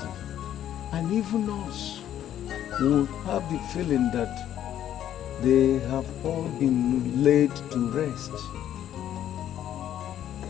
and even us will have the feeling that they have all been laid to rest.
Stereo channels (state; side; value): quieter; right; 11.1 dB